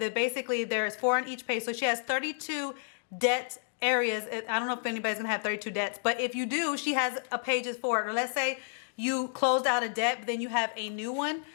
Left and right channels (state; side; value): silent; right; digital silence